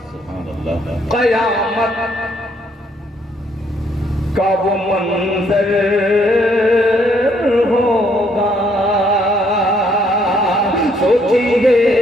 क़यामत का वो मंजर होगा, सोचिए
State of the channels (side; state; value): both; normal; correlation 0.68